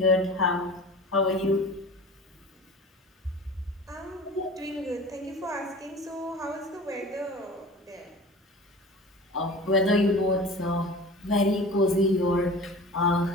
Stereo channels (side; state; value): both; normal; correlation 0.38